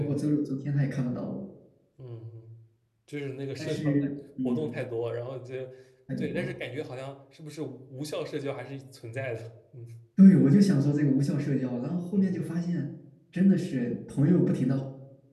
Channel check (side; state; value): both; identical; correlation 1.00